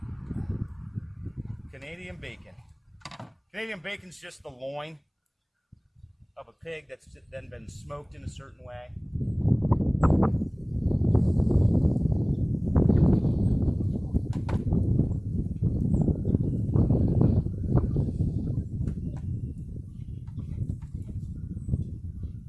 Canadian bacon. Canadian bacon's just the loin of a pig that's then been smoked in a certain way.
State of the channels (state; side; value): identical; both; correlation 1.00